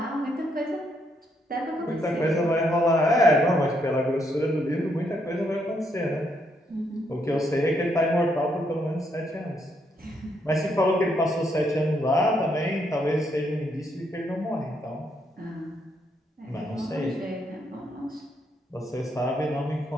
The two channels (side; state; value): both; normal; correlation 0.75